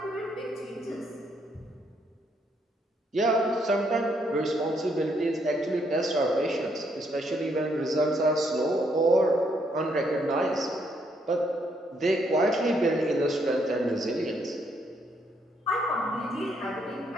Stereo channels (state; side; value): normal; both; correlation 0.73